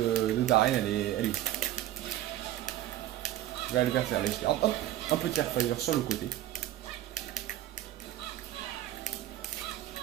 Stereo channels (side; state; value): left; quieter; 13.7 dB